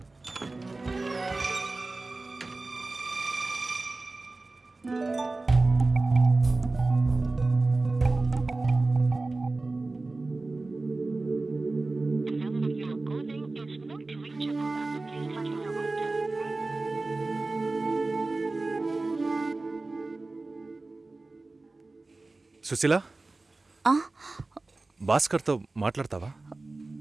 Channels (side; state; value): left; quieter; 3.3 dB